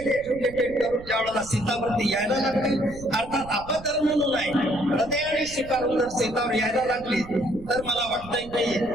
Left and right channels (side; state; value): right; noise; rumble, 16 dB below the sound